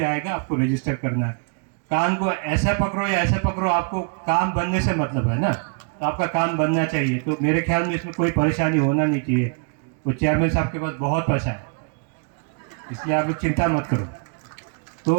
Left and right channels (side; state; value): left; quieter; 39.5 dB